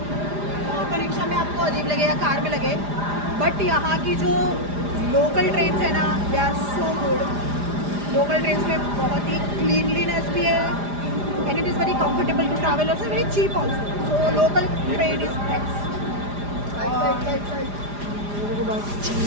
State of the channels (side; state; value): left; late; 4.9 ms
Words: ऑटो रिक्शा में आपको अजीब लगे या कार में लगे, बट यहाँ की जो लोकल ट्रेन है ना, they are so good. Local train में बहुत ही क्लीनलीनेस भी है and it is very comfortable to travel, also very cheap also, so local train is best.